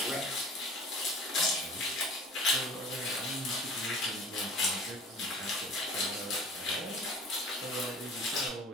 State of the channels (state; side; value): normal; both; correlation 0.45